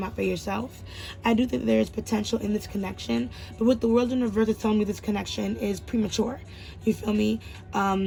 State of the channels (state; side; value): identical; both; correlation 1.00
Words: out for yourself. I do think there is potential in this connection, but what the world in reverse is telling me, this connection is premature. You feel me?